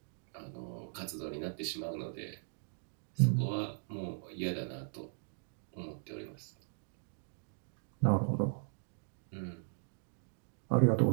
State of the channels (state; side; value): silent; left; digital silence